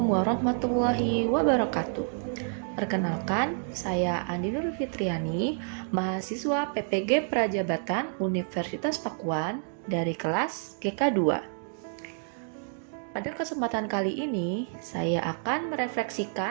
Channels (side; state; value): left; silent; 59 dB below the other